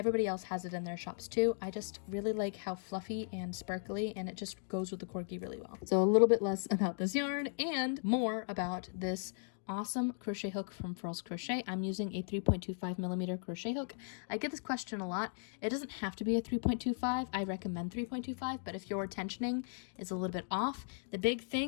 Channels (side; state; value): right; silent; digital silence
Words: else has it in their shops too. I just really like how fluffy and sparkly, and it just goes with the corgi really well. So a little bit less about this yarn and more about this awesome crochet hook from Furls Crochet. I'm using a 3.25 millimeter crochet hook. I get this question a lot. It doesn't have to be a 3.25. I recommend 3.25, but if your tensioning is a little bit off, the big